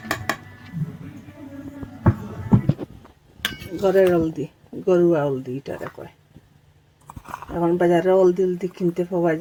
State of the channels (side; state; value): both; identical; correlation 1.00